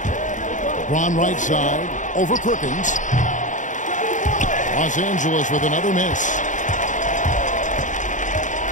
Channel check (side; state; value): right; late; 0.36 ms